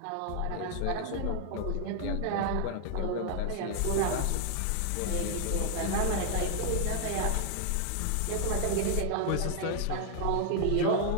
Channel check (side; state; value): both; different; correlation 0.00